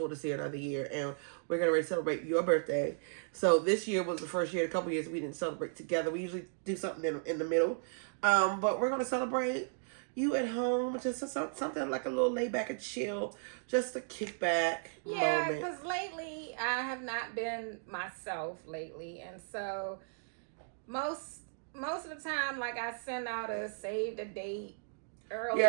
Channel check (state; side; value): silent; left; digital silence